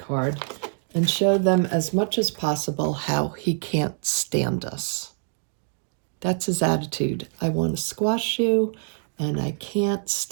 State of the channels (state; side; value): silent; left; 62 dB below the other